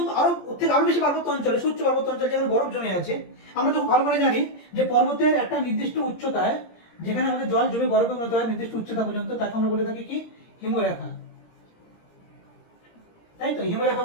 আরো ওর থেকে আরো বেশি পার্বত্য অঞ্চলে, উচ্চ পার্বত্য অঞ্চলে যেখানে বরফ জমে আছে, আমরা তো ভালো করে জানি যে পর্বতের একটা নির্দিষ্ট উচ্চতায় যেখানে আমাদের জল জমে বরফে পরিণত হয় নির্দিষ্ট উচ্চতা পর্যন্ত, তাকে আমরা বলে থাকি কি হিমরেখা, তাই তো? হিমরেখা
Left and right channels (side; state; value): right; late; 17 ms